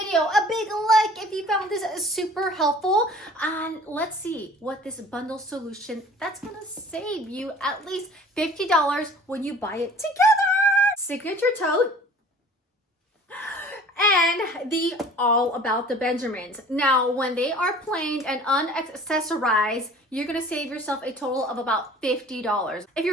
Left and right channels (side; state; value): both; normal; correlation 0.47